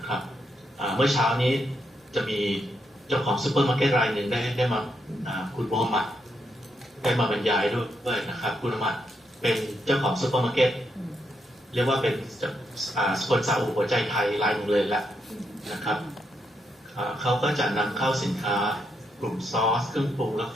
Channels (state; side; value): normal; both; correlation 0.80